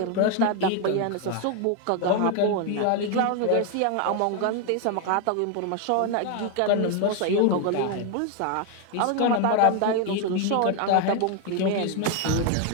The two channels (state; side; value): different; both; correlation 0.01